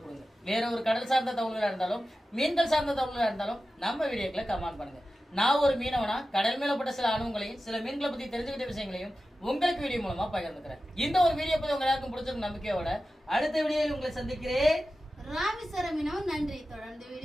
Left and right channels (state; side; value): normal; both; correlation 0.94